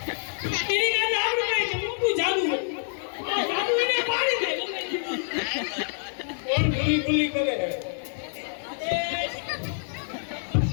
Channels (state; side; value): silent; right; digital silence